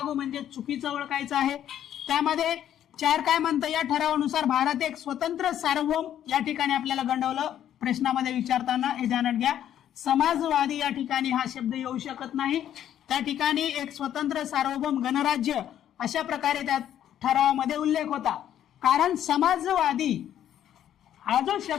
म्हणजे चुकीचं ओळखायचं आहे. त्यामध्ये 4 काय म्हणतं, या ठरावानुसार भारत एक स्वतंत्र सार्वभौम, या ठिकाणी आपल्याला गंडवलं प्रश्नामध्ये विचारताना, हे ध्यानात घ्या. समाजवादी या ठिकाणी हा शब्द येऊ शकत नाही. त्या ठिकाणी एक स्वतंत्र सार्वभौम गणराज्य अशा प्रकारे त्या ठरावामध्ये उल्लेख होता. कारण समाजवादी हा जो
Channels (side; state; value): right; quieter; 10.8 dB